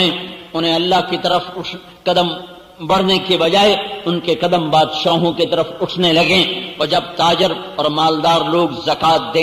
انہیں اللہ کی طرف قدم بڑھنے کے بجائے ان کے قدم بادشاہوں کی طرف اٹھنے لگیں، اور جب تاجر اور مالدار لوگ زکوٰۃ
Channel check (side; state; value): both; identical; correlation 1.00